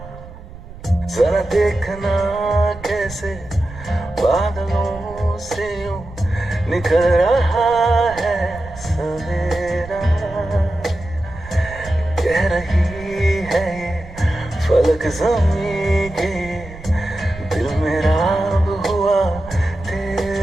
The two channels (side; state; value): right; noise; rumble, 16 dB below the sound